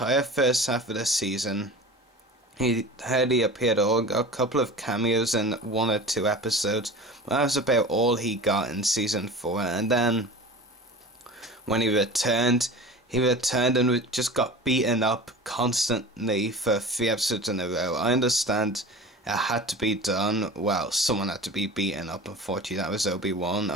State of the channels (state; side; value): normal; both; correlation 0.35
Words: first half of the season, he hardly appeared at all. Got a couple of cameos in 1 or 2 episodes, but that was about all he got in Season 4. And then when he returned and just got beaten up constantly for 3 episodes in a row. I understand it had to be done. Well, someone had to be beaten up. Unfortunately, that was Obi-Wan.